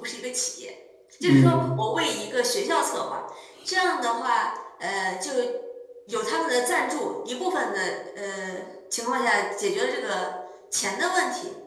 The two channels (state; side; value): identical; both; correlation 1.00